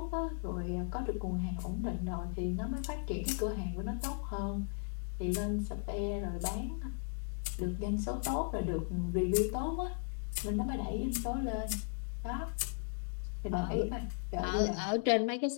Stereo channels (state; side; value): silent; right; digital silence